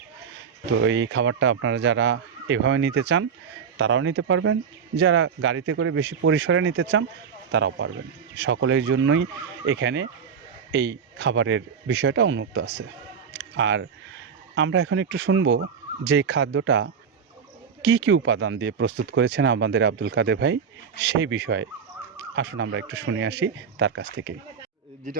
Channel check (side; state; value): left; quieter; 6.8 dB